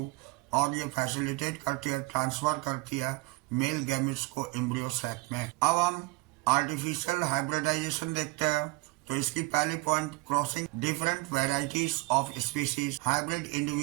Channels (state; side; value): quieter; left; 24.4 dB